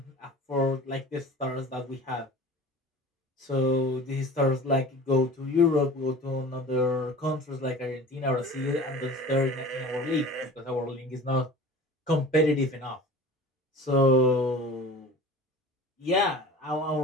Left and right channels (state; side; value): normal; both; correlation 0.40